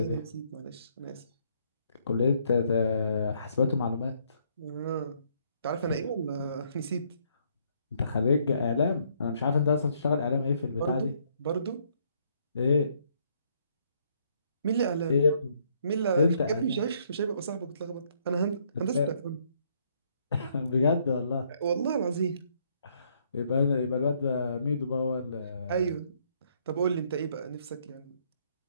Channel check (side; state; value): both; inverted; correlation -0.68